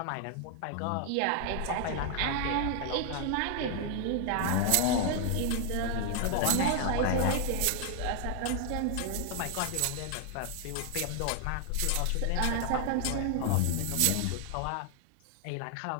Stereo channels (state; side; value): different; both; correlation 0.00